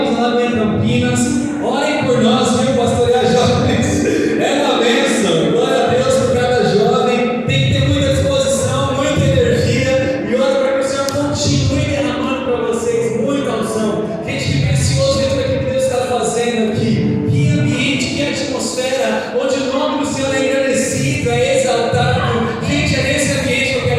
lá em Campinas. Orem por nós, viu? Pastorear jovens é uma bênção. Glória a Deus por cada jovem. Tem que ter muita disposição, muita energia. E ora para que o Senhor continue derramando para vocês muita unção. Gente, que precioso ver tudo aquilo que Deus está fazendo aqui. Que ambiente, que atmosfera, onde o nome do Senhor é engrandecido, é exaltado. Gente, é nesse ambiente que eu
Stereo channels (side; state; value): both; identical; correlation 1.00